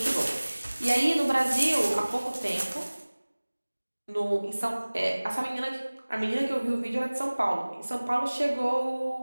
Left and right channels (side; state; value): both; inverted; correlation -1.00